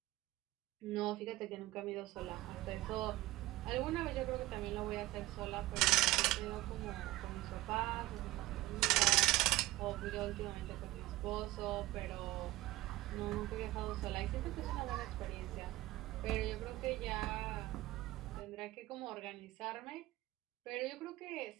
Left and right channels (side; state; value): left; quieter; 18.0 dB